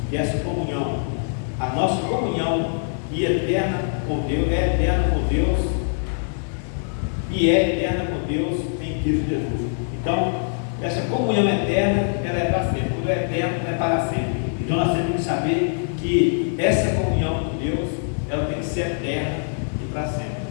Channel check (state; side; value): silent; right; 63 dB below the other